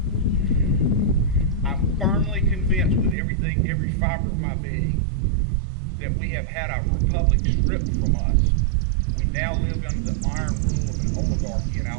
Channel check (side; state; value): left; drops out; at 3.2 s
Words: I'm firmly convinced with every fiber of my being, that we have had our republic stripped from us. We now live under the iron rule of an oligarchy in